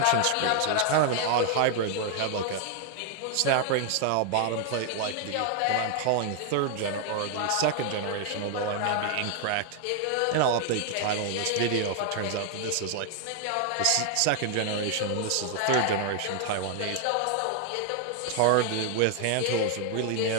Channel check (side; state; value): both; different; correlation 0.00